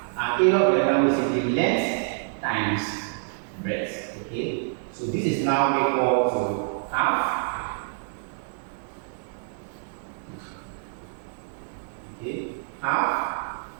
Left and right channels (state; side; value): silent; left; digital silence